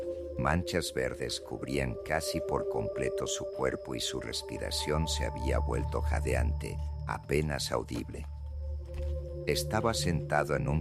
Manchas verdes cubrían casi por completo su cuerpo y su respiración se había vuelto jadeante, apenas audible. Estaba sentado en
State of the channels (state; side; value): identical; both; correlation 1.00